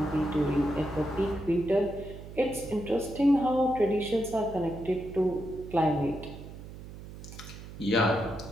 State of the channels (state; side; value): noise; right; hum, 14 dB below the sound